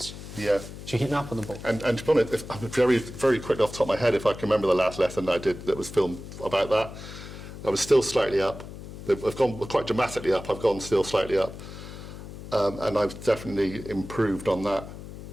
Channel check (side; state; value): left; noise; hum, 12 dB below the sound